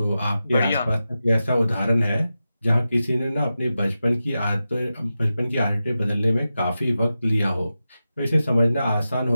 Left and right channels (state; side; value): inverted; both; correlation -0.92